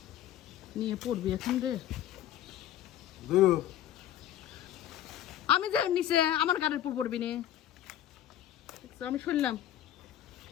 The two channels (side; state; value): right; quieter; 11.8 dB